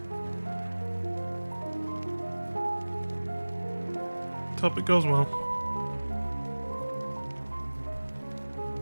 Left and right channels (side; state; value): both; inverted; correlation -1.00